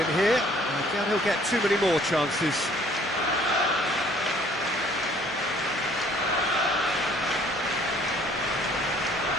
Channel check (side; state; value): both; normal; correlation 0.58